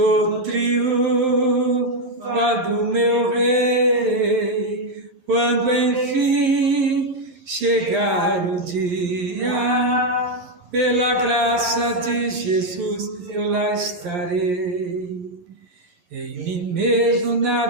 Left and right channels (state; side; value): late; left; 11 ms